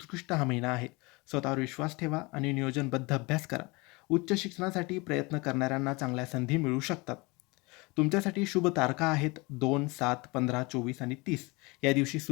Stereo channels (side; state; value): right; quieter; 25.7 dB